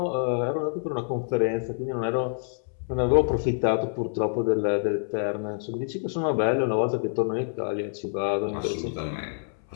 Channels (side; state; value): right; silent; 60 dB below the other